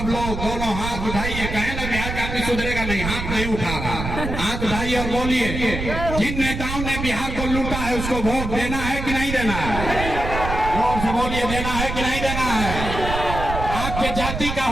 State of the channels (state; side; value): noise; right; rumble, 5 dB below the sound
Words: लोग दोनों हाथ उठाइए। कहे ना बिहार का आदमी सुधरेगा नहीं, हाथ नहीं उठा रहा, हाथ उठाइए और बोलिए, जिन नेताओं ने बिहार को लूटा है उसको वोट देना है कि नहीं देना है। जोर से बोलिए, देना है कि नहीं देना है। आपके जाति का